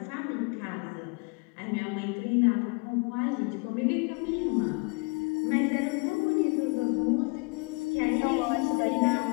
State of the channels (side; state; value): right; quieter; 31.7 dB